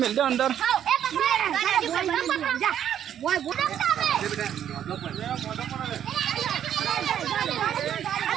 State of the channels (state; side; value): quieter; left; 9.9 dB